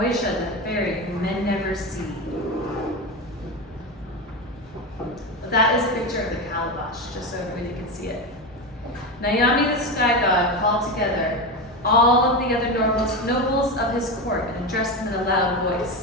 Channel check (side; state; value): both; normal; correlation 0.18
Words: the fairy whom men never see. That is a picture of the calabash, just so everybody can see it. Nayami, the sky god, called together all of the other nobles of his court and addressed them in a loud